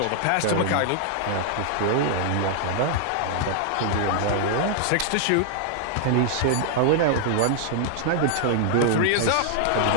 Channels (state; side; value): different; both; correlation 0.00